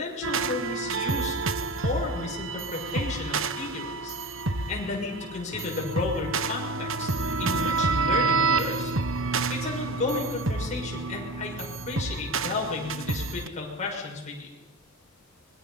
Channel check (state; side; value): normal; both; correlation 0.29